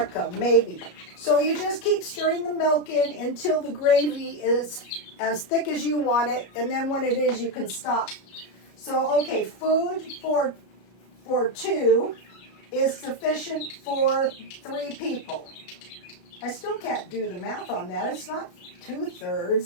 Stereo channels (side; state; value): right; late; 33 ms